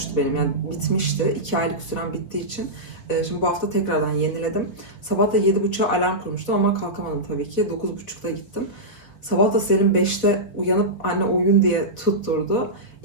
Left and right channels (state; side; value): late; right; 3.8 ms